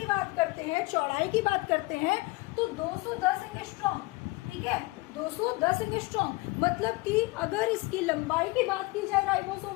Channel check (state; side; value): quieter; right; 22.8 dB